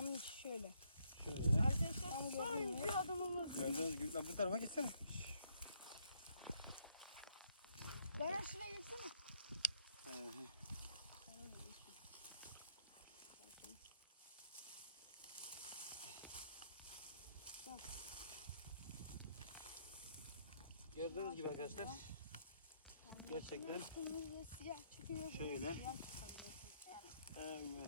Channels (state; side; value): inverted; both; correlation -0.70